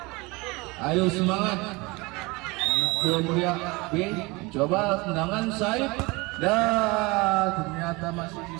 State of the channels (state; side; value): quieter; left; 24.8 dB